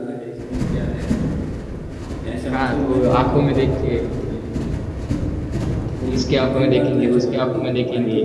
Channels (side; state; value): both; identical; correlation 1.00